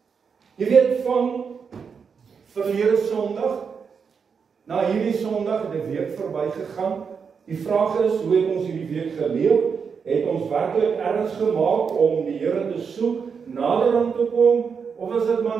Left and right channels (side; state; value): left; quieter; 6.1 dB